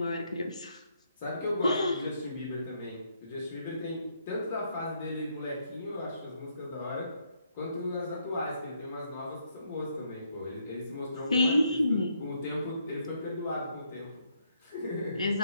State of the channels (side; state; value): both; inverted; correlation -0.73